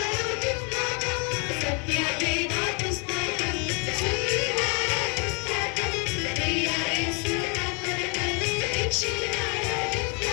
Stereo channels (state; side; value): quieter; right; 34.9 dB